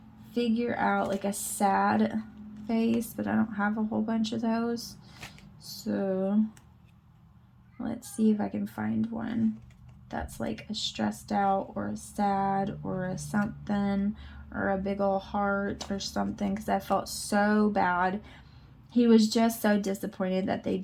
figure out like a sad face, but I don't have a whole bunch of those. So let's see if I can find one that's like a stressed out or a sad or a something, or a big old heart or something, because I felt so bad. He was just so disappointed that they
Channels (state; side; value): identical; both; correlation 1.00